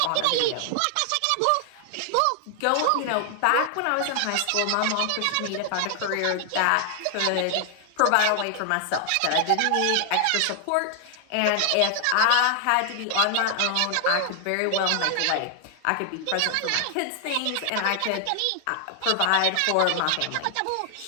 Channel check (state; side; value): different; both; correlation 0.00